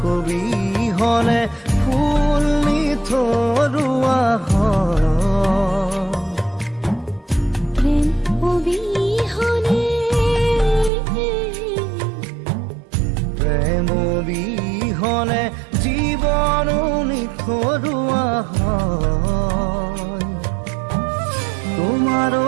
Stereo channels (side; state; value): left; drops out; at 10.9 s